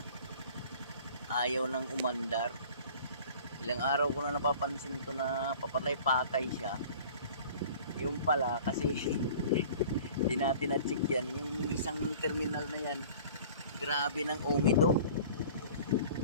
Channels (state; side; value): inverted; both; correlation -0.46